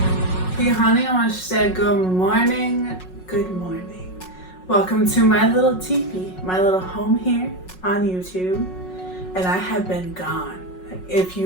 honey, I want to say good morning. Good morning. Welcome to my little teepee, my little home here on YouTube. And I have been gone. If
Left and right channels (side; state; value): right; late; 5.4 ms